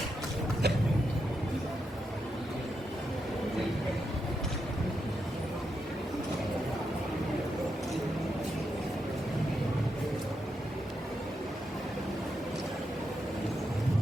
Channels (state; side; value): normal; both; correlation 0.84